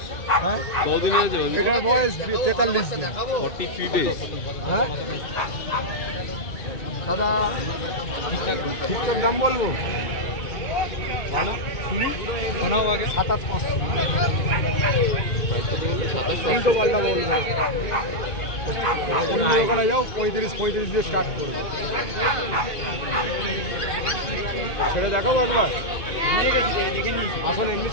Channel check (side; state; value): right; late; 2.0 ms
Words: হ্যাঁ কতদিনে আছে? এটার বয়স 43 দিন। 43 days। হ্যাঁ দাদা ঠিকঠাক দাম বলবো? 27,500। তিনশো পাল্টা বলবো। অন্য দোকানে যাও 35 দিয়ে স্টার্ট করবো। ছেড়ে দেখাবো একবার? আসুন এমনি